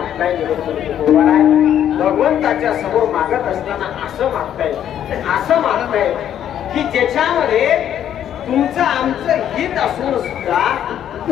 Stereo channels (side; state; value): right; quieter; 10.2 dB